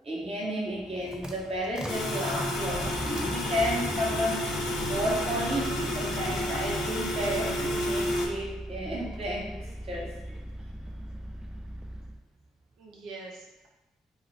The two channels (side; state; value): both; normal; correlation 0.67